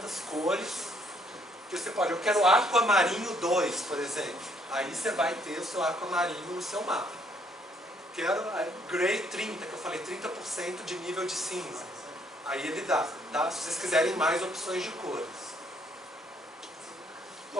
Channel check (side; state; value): both; normal; correlation 0.67